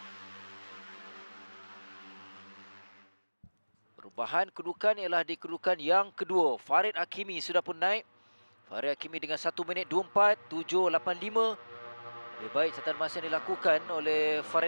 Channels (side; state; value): both; inverted; correlation -1.00